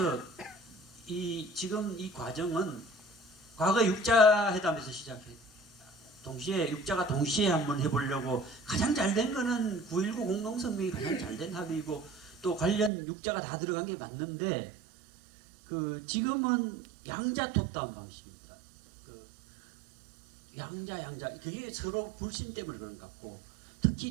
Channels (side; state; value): left; drops out; at 12.9 s